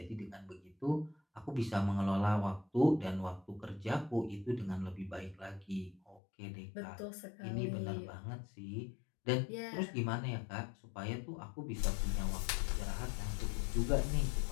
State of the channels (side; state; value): right; drops out; at 6.2 s